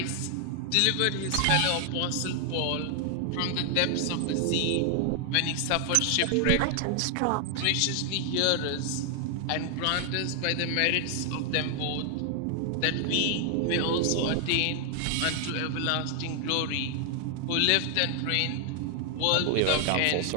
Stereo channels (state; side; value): different; both; correlation 0.00